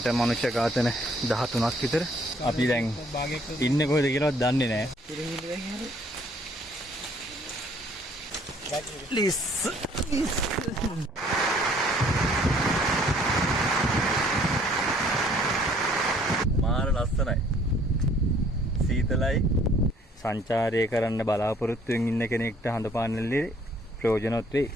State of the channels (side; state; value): both; normal; correlation 0.60